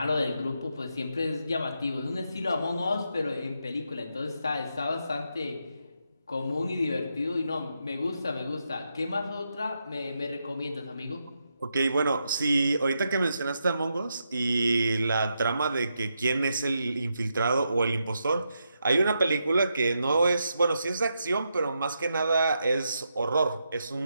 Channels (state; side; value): inverted; both; correlation -0.83